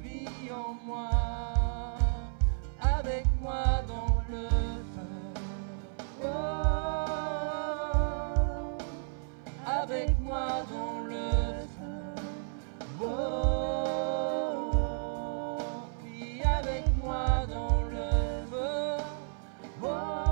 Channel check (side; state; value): left; silent; 56 dB below the other